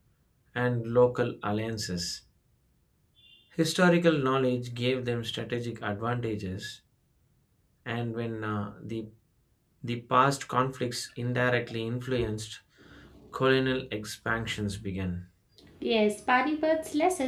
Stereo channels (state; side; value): identical; both; correlation 1.00